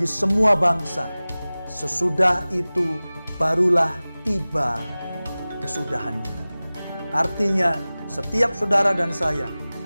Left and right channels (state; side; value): inverted; both; correlation -0.98